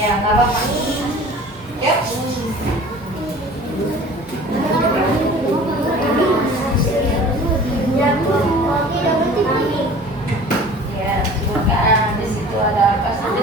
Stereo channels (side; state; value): both; normal; correlation 0.44